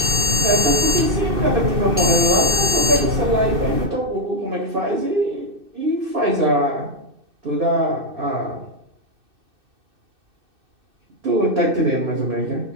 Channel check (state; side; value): late; left; 2.6 ms